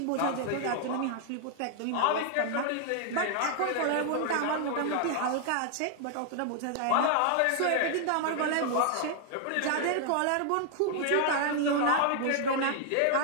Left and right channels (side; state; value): both; different; correlation 0.00